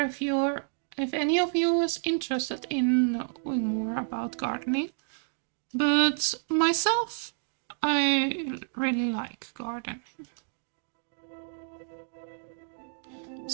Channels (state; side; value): silent; left; digital silence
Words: any of you is interested in knowing more about gardening, but myself, I really like gardening.